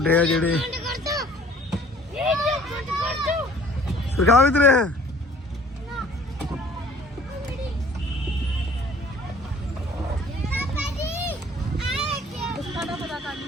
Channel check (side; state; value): both; normal; correlation 0.53